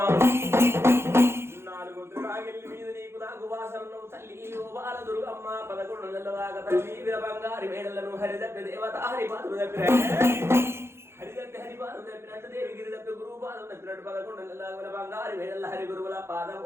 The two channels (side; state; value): left; late; 0.12 ms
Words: 4 వద్దురాగిల్లి మీద నీకు నాకు వాసనను తల్లి ఓ బాల దుర్గమ్మ 11 నెలల దాకా తల్లి వీర బంగారి మేడలను హరిదప్పి దేవత హరిపాదులు దగ్గర హరిదప్పి హరిపాదులు తప్పినట్టు దేవి గిరి తప్పి గురువు పాదం తప్పినట్టు 11 నెలల దాకా బంగారి మేడల హరి గురువుల